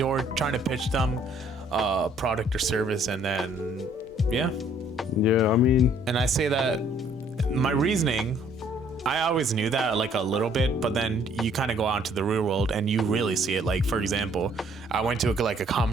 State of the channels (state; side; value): normal; both; correlation 0.62